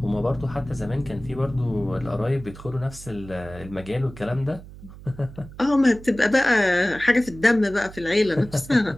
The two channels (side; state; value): right; noise; hum, 17 dB below the sound